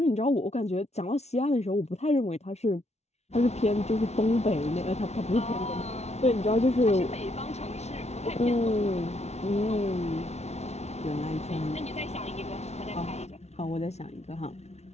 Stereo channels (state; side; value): late; right; 0.31 ms